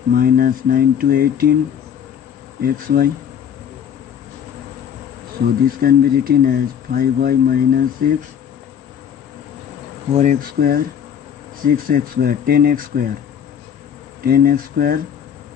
minus 9 to 18 xy. So this can be written as 5y minus 6, 4x square, 6x square, 10x square, 10x square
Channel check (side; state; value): right; quieter; 8.5 dB